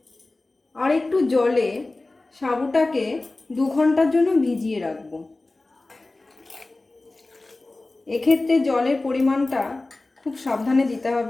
আর একটু জলে সাবুটাকে 2 ঘন্টার জন্য ভিজিয়ে রাখবো। এক্ষেত্রে জলের পরিমাণটা খুব সাবধানে দিতে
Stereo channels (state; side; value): quieter; right; 3.1 dB